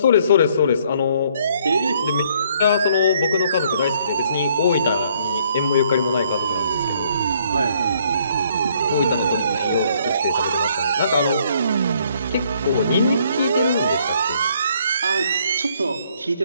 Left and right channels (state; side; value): inverted; both; correlation -0.66